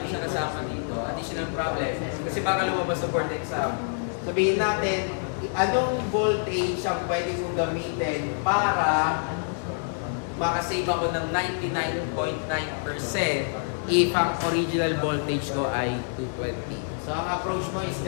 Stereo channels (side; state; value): right; silent; 55 dB below the other